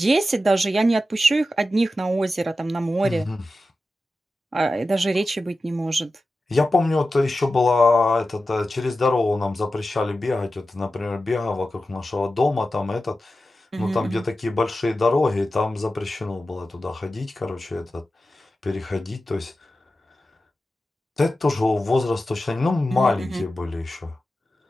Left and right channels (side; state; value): both; normal; correlation 0.93